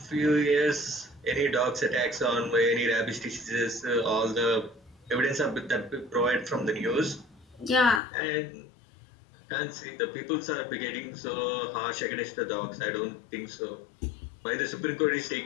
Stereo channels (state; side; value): drops out; right; at 8.0 s